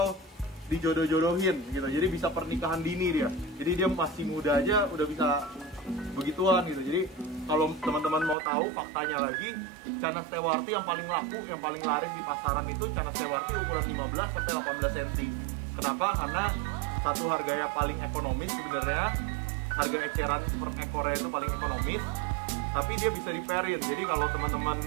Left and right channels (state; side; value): drops out; left; at 8.3 s